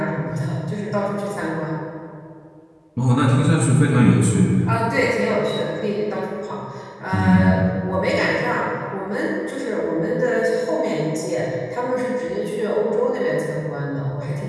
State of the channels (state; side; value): identical; both; correlation 1.00